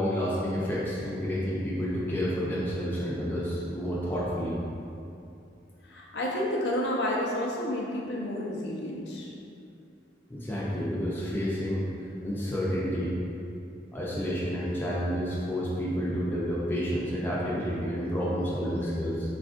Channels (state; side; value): normal; both; correlation 0.67